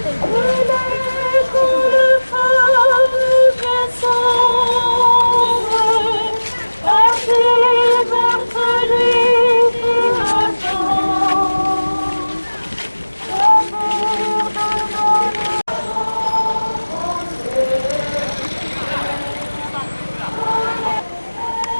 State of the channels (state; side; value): inverted; both; correlation -1.00